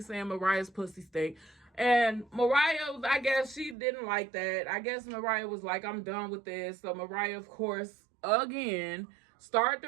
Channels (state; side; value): drops out; left; at 3.8 s